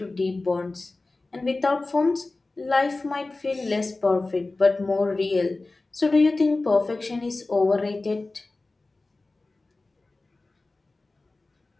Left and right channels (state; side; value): quieter; right; 3.2 dB